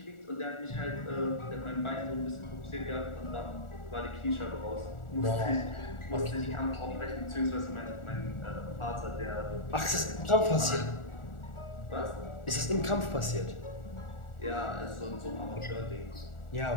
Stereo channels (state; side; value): late; right; 1.4 ms